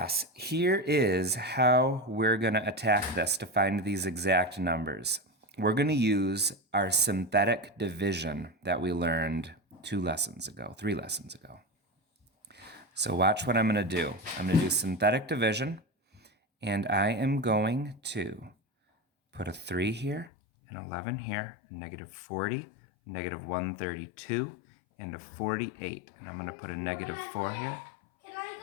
here is how we're going to attack this to find these exact numbers. We're going to use our synthetic division that we learned 3 lessons ago. So watch what I'm going to do. I'm going to do synthetic division, and I am going to put a 3 here, an 11 here, a -40, -132, and a 48. And I'm going to put a -4 here. Can I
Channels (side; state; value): right; drops out; at 20.3 s